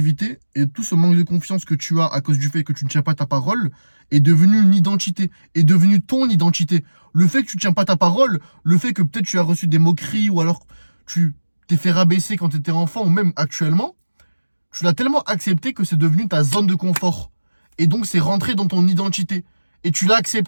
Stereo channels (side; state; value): both; inverted; correlation -1.00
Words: et tout ce manque de confiance que tu as à cause du fait que tu ne tiens pas ta parole est devenu une identité, est devenu ton identité. Le fait que tu ne tiens pas ta parole, le fait que peut-être tu as reçu des moqueries ou alors tu t'es fait rabaisser quand tu étais enfant ou même actuellement, tu l'as tellement accepté que c'est devenu ta zone de confort. Et donc c'est rentré dans ton identité. Et tu l'as